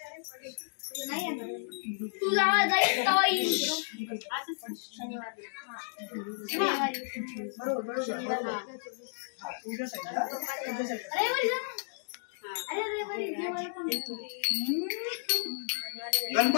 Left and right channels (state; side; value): silent; right; digital silence